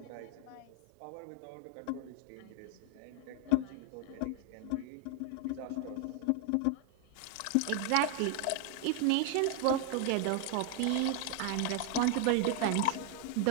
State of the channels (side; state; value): both; different; correlation 0.00